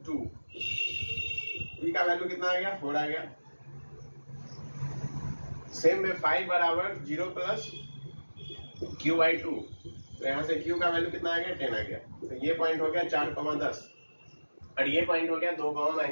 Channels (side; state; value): both; inverted; correlation -1.00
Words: 2। p का वैल्यू कितना आ गया? 4 आ गया। सेम में 5 बराबर 0 प्लस q बाई 2, तो यहाँ से q का वैल्यू कितना आ गया? 10 आ गया। तो ये पॉइंट हो गया 4, 10। और ये पॉइंट हो गया 2,